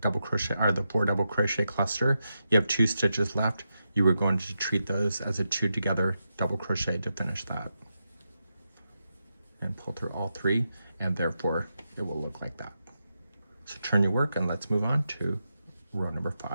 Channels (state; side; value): inverted; both; correlation -0.87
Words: crochet, or the 4 double crochet cluster. You have 2 stitches left. You are going to treat those as a 2 together double crochet to finish that. And pull through all 3, and therefore it will look like that. So turn your work, and let's move on to row number